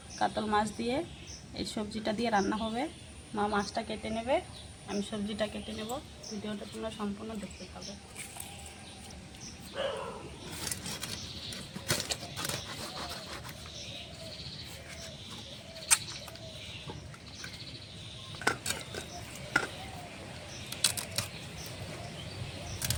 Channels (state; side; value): identical; both; correlation 1.00